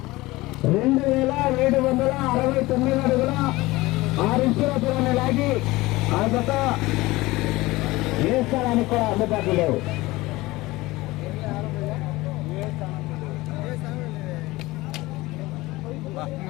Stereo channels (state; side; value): quieter; right; 19.9 dB